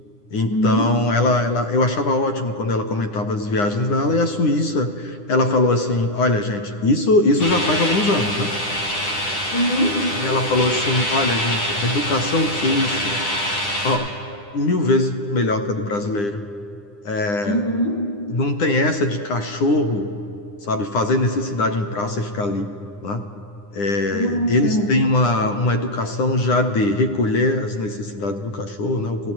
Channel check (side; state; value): right; late; 9.9 ms